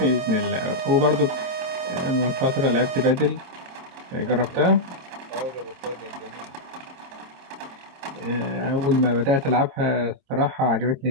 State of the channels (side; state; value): left; late; 23 ms